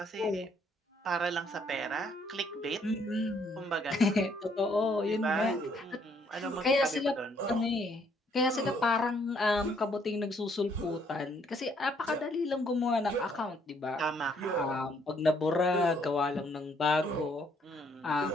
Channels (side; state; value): both; normal; correlation 0.67